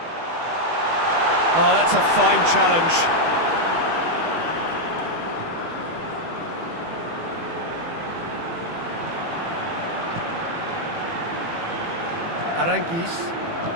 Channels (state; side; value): late; left; 18 ms